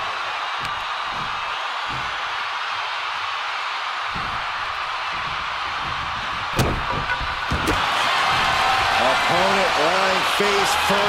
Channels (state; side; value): identical; both; correlation 1.00